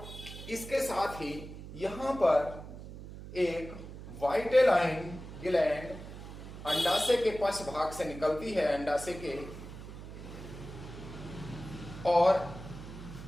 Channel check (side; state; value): right; noise; hum, 12 dB below the sound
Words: इसके साथ ही यहां पर एक वाइटेलाइन ग्लैंड अंडाशय के पश्च भाग से निकलती है, अंडाशय के। और